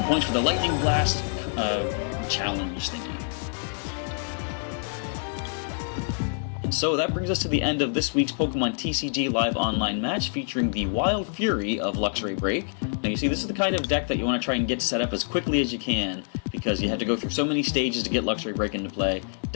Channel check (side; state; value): right; silent; digital silence